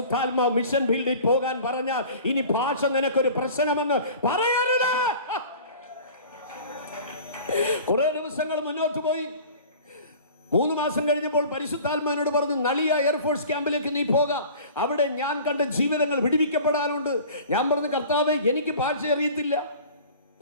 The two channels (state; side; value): inverted; both; correlation -0.43